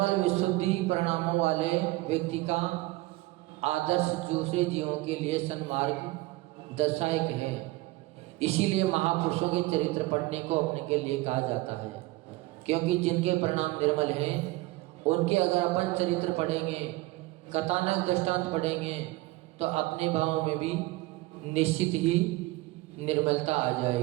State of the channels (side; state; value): left; quieter; 20.2 dB